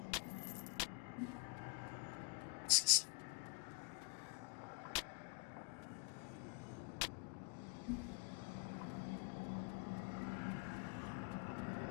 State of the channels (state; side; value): quieter; right; 34.0 dB